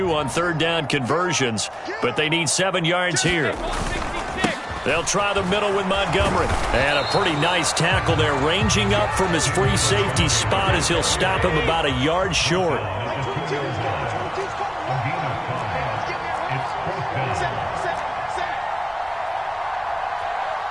on 3rd down conversions, but they need 7 yards here. They'll try the middle with Montgomery. And a pretty nice tackle there, ranging up from his free safety spot as he'll stop him about a yard short.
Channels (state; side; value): identical; both; correlation 1.00